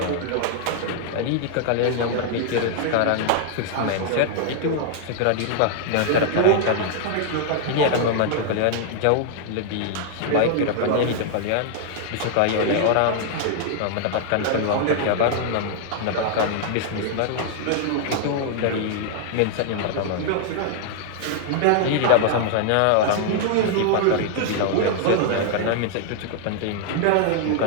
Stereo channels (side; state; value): both; different; correlation 0.00